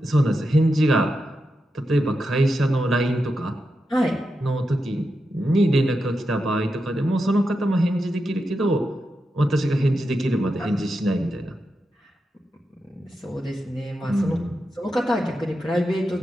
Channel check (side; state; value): both; normal; correlation 0.88